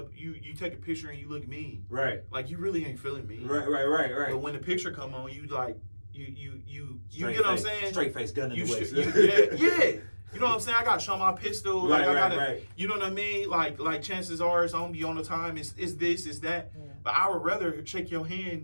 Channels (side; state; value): both; inverted; correlation -1.00